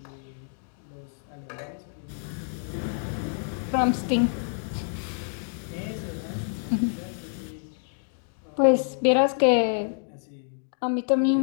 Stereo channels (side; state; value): right; silent; digital silence